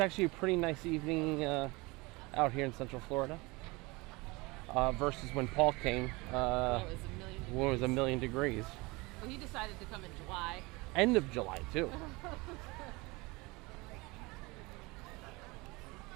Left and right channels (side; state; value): left; quieter; 24.4 dB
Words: a pretty nice evening out here in Central Florida. Versus when Paul came, when it was 1,000,000 degrees. Well, he decided to come in July. End of July, too.